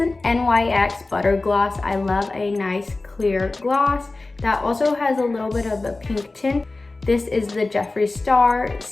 NYX Butter Gloss. I love a nice clear gloss that also has a little bit of a pink tint. This is the Jeffree Star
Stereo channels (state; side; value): quieter; right; 3.2 dB